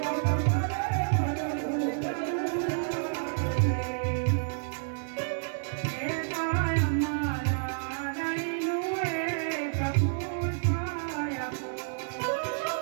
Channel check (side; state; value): left; silent; 58 dB below the other